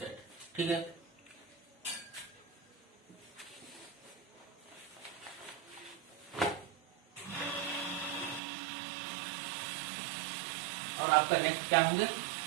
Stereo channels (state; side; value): drops out; left; at 8.4 s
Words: ठीक है, और आपका नेक्स्ट क्या होंगे,